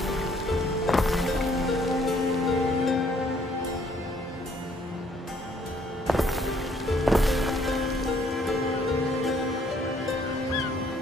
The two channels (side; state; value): both; normal; correlation 0.64